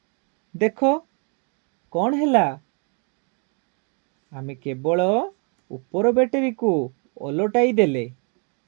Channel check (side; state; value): left; quieter; 37.6 dB